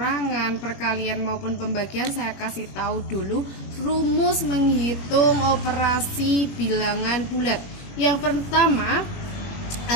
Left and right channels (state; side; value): late; right; 21 ms